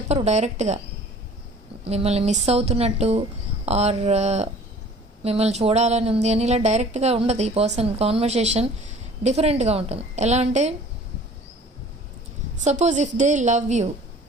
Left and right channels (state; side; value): normal; both; correlation 0.48